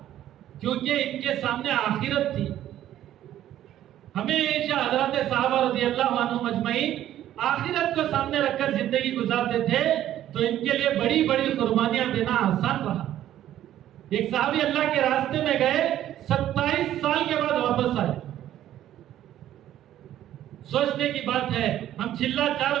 کیونکہ ان کے سامنے آخرت تھی۔ ہمیشہ حضرات صحابہ رضی اللہ عنہ مجمعین آخرت کو سامنے رکھ کر زندگی گزارتے تھے، تو ان کے لیے بڑی بڑی قربانیاں دینا آسان رہا۔ ایک صحابی اللہ کے راستے میں گئے، 27 سال کے بعد واپس آئے۔ سوچنے کی بات ہے، ہم چلا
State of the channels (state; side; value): quieter; left; 12.2 dB